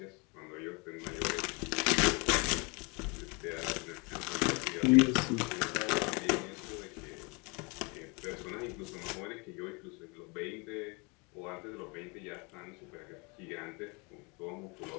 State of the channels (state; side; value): quieter; right; 30.1 dB